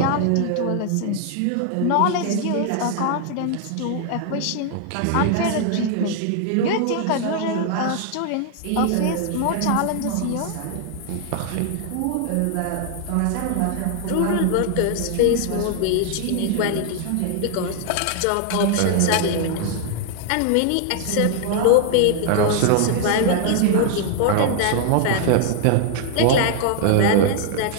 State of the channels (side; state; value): both; different; correlation 0.00